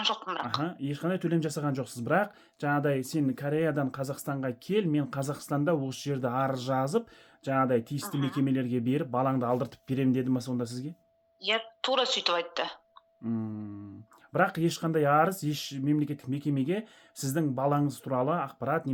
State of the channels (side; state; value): both; identical; correlation 1.00